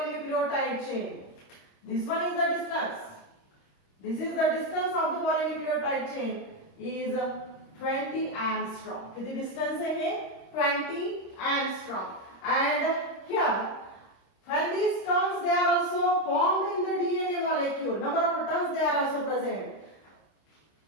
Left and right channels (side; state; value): right; late; 26 ms